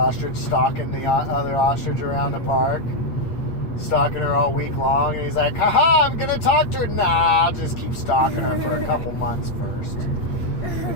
stalking the other ostrich around the park. Stalking her all week long. And he's like, haha, I'm going to talk to her. Nah, I'll just keep stalking her for a couple months first.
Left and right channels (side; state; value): right; late; 8.7 ms